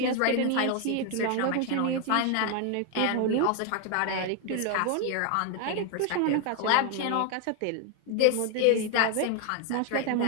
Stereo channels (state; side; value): different; both; correlation 0.01